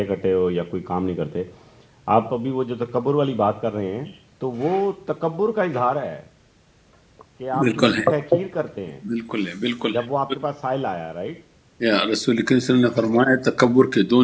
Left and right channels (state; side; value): identical; both; correlation 1.00